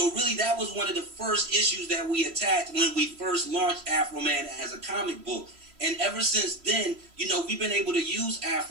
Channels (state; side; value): late; left; 3.0 ms